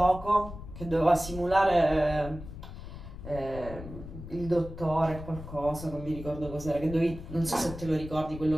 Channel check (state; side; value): noise; left; rumble, 12 dB below the sound